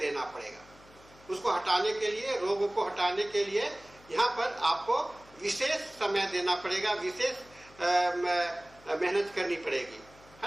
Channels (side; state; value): left; noise; hum, 25 dB below the sound